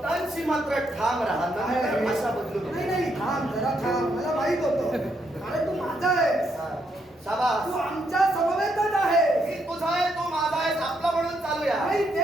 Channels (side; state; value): both; normal; correlation 0.77